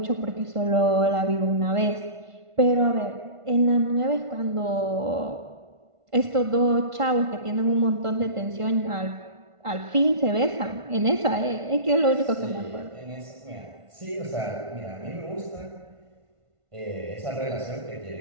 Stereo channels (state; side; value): late; left; 1.5 ms